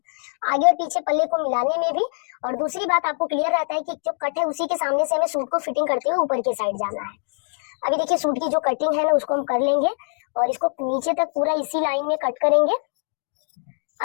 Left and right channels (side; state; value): right; silent; digital silence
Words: आगे और पीछे पल्ले को मिलाने में भी। और दूसरी बात, आपको क्लियर रहता है कि जो कट है उसी के सामने से हमें सूट को फिटिंग करते हुए ऊपर के साइड जाना है। अभी देखिए सूट की जो कटिंग है ना, उसको हम कर लेंगे, और इसको नीचे तक पूरा इसी लाइन में कट करेंगे।